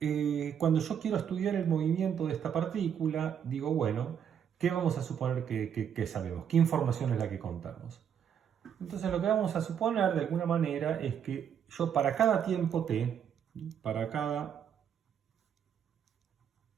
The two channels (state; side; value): quieter; left; 8.4 dB